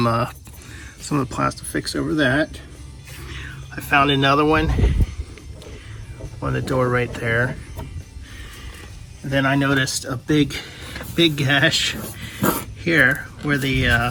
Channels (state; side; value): identical; both; correlation 1.00